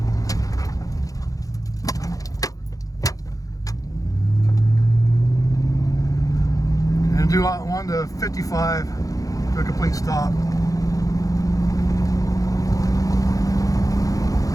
And do 1 to 55 to a complete stop.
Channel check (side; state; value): right; late; 0.17 ms